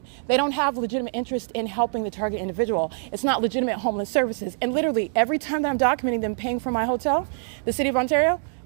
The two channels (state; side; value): silent; left; digital silence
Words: they don't have legitimate interest in helping the target individual. It's not legitimate homeless services. And literally every time that I'm documenting them paying for my hotel, the city of Ontario,